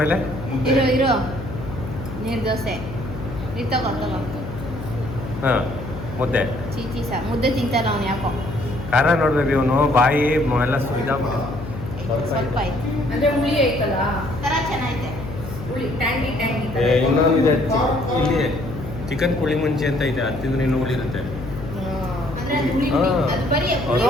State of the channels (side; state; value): left; noise; hum, 10 dB below the sound